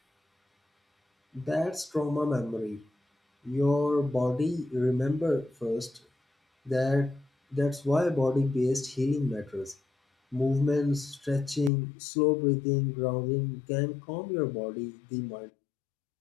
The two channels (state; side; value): drops out; right; at 11.7 s